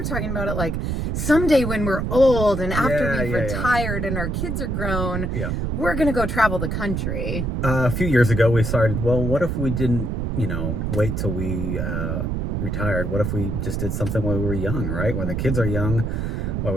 talking about it like someday when we're old and after we've retired and our kids are grown, we're going to go travel the country. A few years ago, we started, well, what if we didn't, wait till we retired? What if we just did something when we were young, right? When the kids are young, while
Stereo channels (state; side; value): noise; right; rumble, 1 dB below the sound